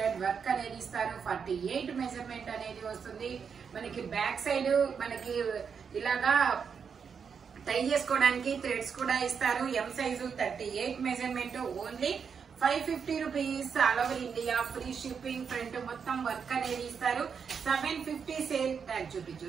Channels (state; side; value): quieter; left; 6.4 dB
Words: వర్క్ అనేది ఇస్తారు. 48 మెజర్మెంట్ అనేది వస్తుంది. మనకి బ్యాక్ సైడ్ మనకి ఇలాగా టై చేసుకోవడానికి థ్రెడ్స్ కూడా ఇస్తారు. ఎం size 38 measurement, only 550 rupees. All over India free shipping. Front మొత్తం వర్క్ అనేది ఇస్తారు. 750 సేల్ ట్యాగ్ చూపించు.